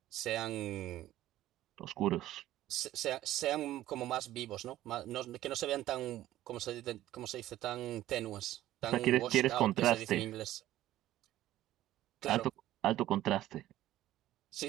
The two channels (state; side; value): quieter; left; 14.1 dB